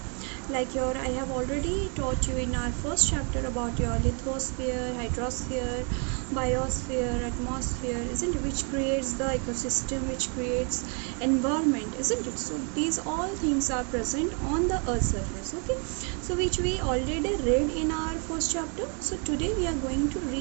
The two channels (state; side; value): quieter; left; 37.9 dB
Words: Like I have already taught you in our first chapter about your lithosphere, hydrosphere, biosphere, atmosphere, isn't it, which creates the ecosystem, which creates environment, isn't it? So these all things are present on the earth surface, okay, so which we already read in our first chapter. So today we are going to